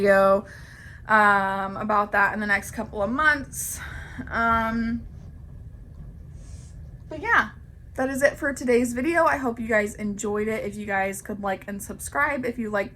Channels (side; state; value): both; identical; correlation 1.00